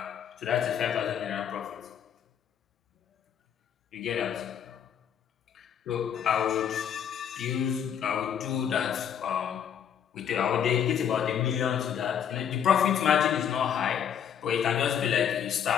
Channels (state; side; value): quieter; right; 8.6 dB